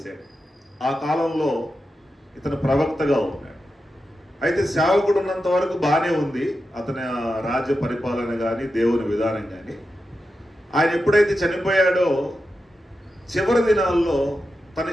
ఆ కాలంలో ఇతను ప్రవక్తగా ఉన్నాడు. అయితే సేవకుడు ఉన్నంత వరకు బాగానే ఉంది అతని రాజ్య పరిపాలన కానీ దేవుని విధానం కానీ. ఆయన ఎప్పుడైతే చనిపోయాడో చివరి దినాల్లో తన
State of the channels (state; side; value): normal; both; correlation 0.90